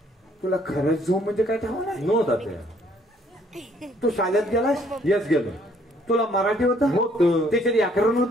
तुला खरंच झो म्हणजे काय ठाव नाही नो तात्या तू शाळेत गेलास येस गेलो तुला मराठी होतं होतं त्याच्यात व्याकरण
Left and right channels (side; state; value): both; normal; correlation 0.64